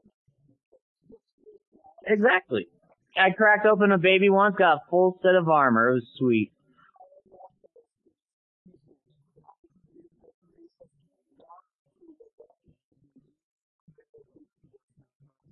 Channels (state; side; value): identical; both; correlation 1.00